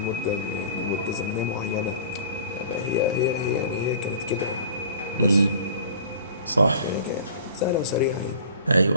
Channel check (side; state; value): both; inverted; correlation -0.44